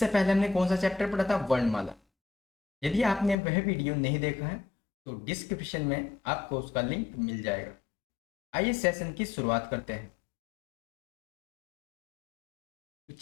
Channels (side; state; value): right; drops out; at 3.4 s